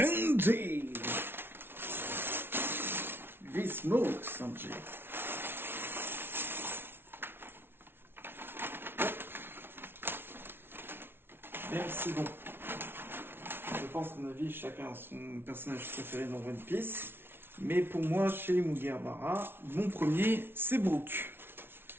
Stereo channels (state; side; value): late; left; 0.11 ms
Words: V-Smoke Sanjay. Merci bon. Je pense qu'à mon avis, chacun a son personnage préféré dans One Piece. Mais pour moi, chez les Mugiwara, mon premier, c'est Brook.